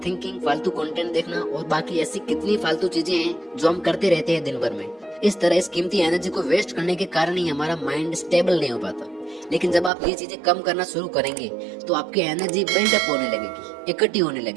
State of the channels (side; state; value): left; drops out; at 9.9 s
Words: थिंकिंग, फालतू कंटेंट देखना और बाकी ऐसी कितनी फालतू चीजें हैं जो हम करते रहते हैं दिन भर में, इस तरह इस कीमती एनर्जी को वेस्ट करने के कारण ही हमारा माइंड स्टेबल नहीं हो पाता। लेकिन जब आप ये चीजें कम करना शुरू करेंगे तो आपकी एनर्जी बिल्डअप होने लगेगी, इकट्ठी होने